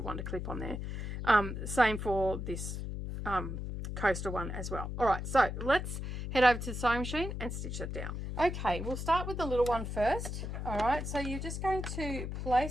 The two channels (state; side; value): noise; left; hum, 5 dB below the sound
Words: wonder clip on there. Same for this coaster one as well. All right, so let's head over to the sewing machine and stitch it down. Okay, we'll start with the little one first. All right, so you're just going to